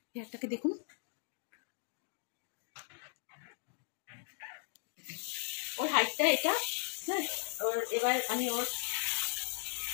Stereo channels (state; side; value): silent; right; 53 dB below the other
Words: হেয়ারটাকে দেখুন। ওর হাইটটা এটা। হ্যাঁ, ওর এবার আমি ওর